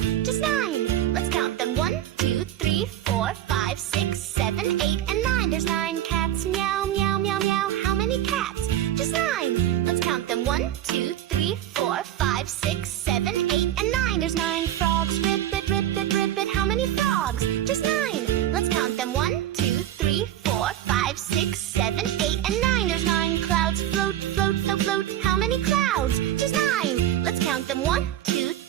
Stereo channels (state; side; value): quieter; left; 12.2 dB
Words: Just 9. Let's count them. 1, 2, 3, 4, 5, 6, 7, 8, and 9. There's 9 cats. Meow, meow, meow, meow. How many cats? Just 9. Let's count them. 1, 2, 3, 4, 5, 6, 7, 8, and 9. There's 9 frogs. Ribbit, ribbit, ribbit. How many frogs? Just 9. Let's count them. 1, 2, 3, 4, 5, 6, 7, 8, and 9. There's 9 clouds. Float, float, so float. How many clouds? Just 9. Let's count them. 1, 2,